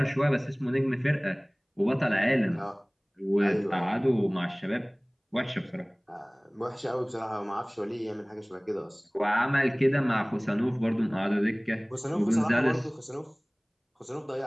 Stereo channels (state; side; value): identical; both; correlation 1.00